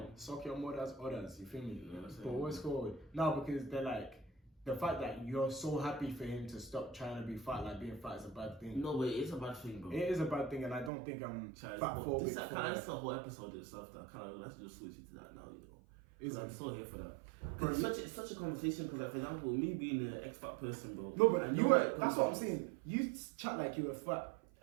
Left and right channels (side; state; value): left; drops out; at 10.9 s